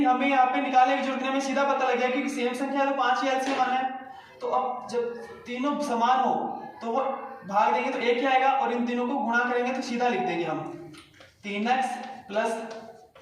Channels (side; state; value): both; identical; correlation 1.00